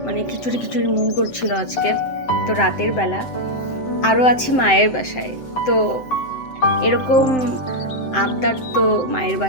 মানে খিচুড়ি খিচুড়ি মন করছিল আজকে। তো রাতের বেলা আরও আছি মায়ের বাসায়। তো এরকম আবদার তো মায়ের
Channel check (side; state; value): right; late; 7.8 ms